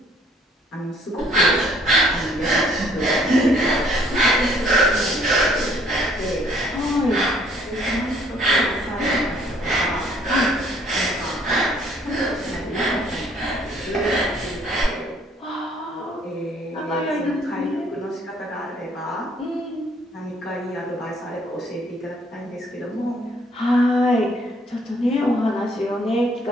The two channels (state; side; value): normal; both; correlation 0.62